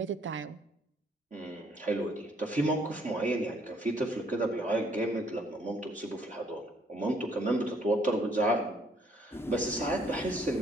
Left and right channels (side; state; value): both; normal; correlation 0.65